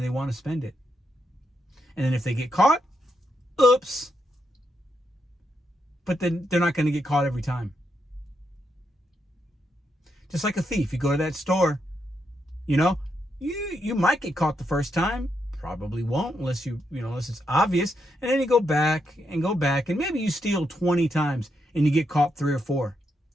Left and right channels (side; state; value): both; normal; correlation 0.81